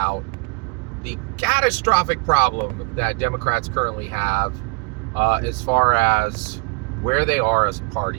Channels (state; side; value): quieter; left; 31.1 dB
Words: the catastrophic problem that Democrats currently have as far as where they are as a